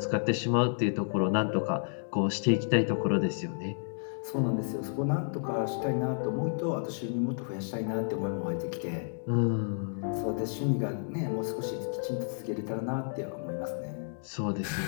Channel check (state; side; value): silent; right; digital silence